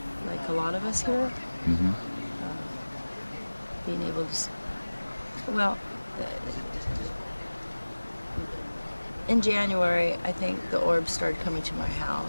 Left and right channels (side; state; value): both; inverted; correlation -1.00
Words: like a lot of us here. Mm-hmm. Being able to, in January, I think the orbs started coming to my